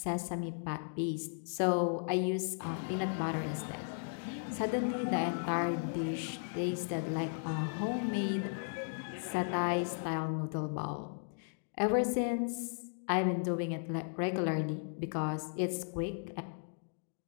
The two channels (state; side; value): silent; right; digital silence